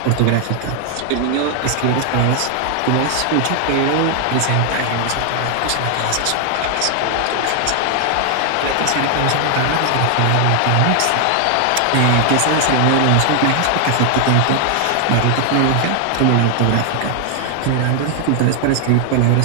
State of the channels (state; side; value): different; both; correlation 0.00